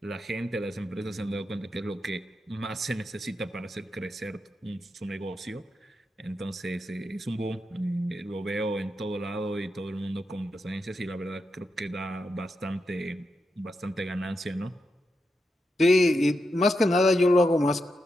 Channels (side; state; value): both; normal; correlation 0.85